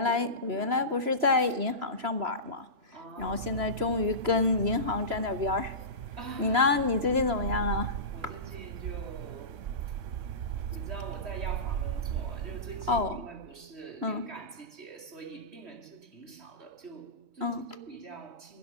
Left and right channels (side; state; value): left; late; 3.0 ms